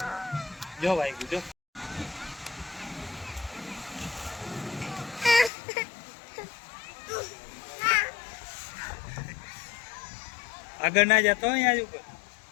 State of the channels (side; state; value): right; drops out; at 5.5 s